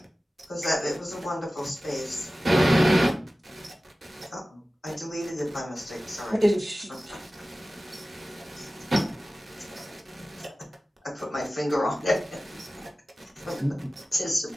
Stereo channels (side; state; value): both; normal; correlation 0.96